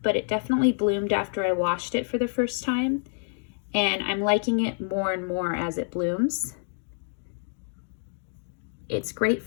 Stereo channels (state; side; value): silent; right; 60 dB below the other